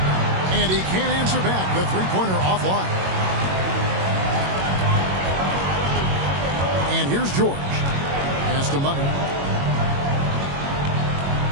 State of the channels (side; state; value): left; late; 21 ms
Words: And he can't answer back. The three-pointer offline. And here's George. Pass to Money.